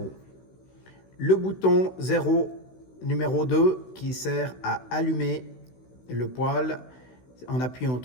Le bouton 0 numéro 2 qui sert à allumer le poêle. En appuyant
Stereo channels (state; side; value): late; right; 16 ms